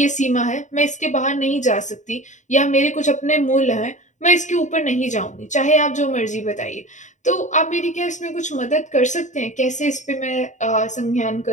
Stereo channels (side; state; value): right; late; 0.35 ms